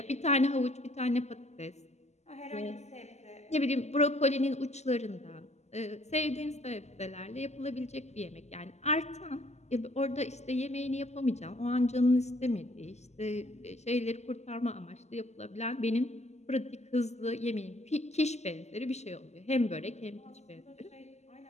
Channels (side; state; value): right; late; 0.33 ms